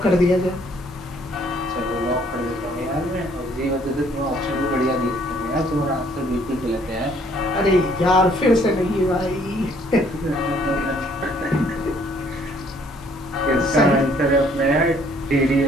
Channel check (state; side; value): normal; both; correlation 0.62